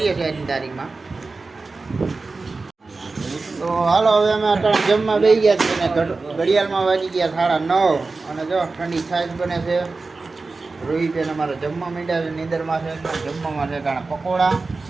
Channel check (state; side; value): quieter; left; 3.8 dB